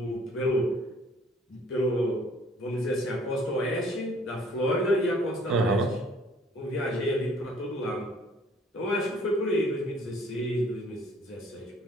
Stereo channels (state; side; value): normal; both; correlation 0.58